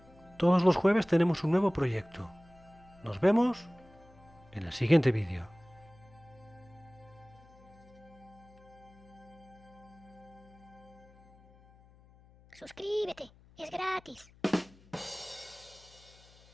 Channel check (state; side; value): noise; left; hum, 25 dB below the sound